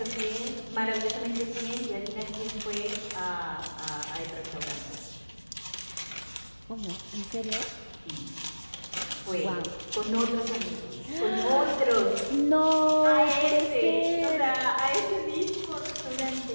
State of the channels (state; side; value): inverted; both; correlation -1.00